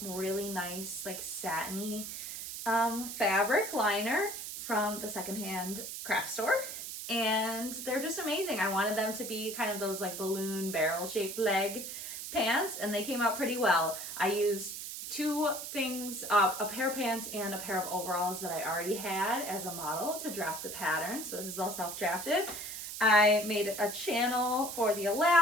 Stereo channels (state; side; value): noise; right; hiss, 7 dB below the sound